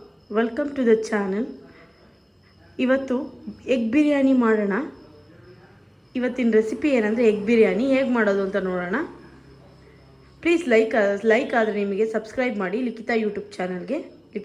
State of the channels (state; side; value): identical; both; correlation 1.00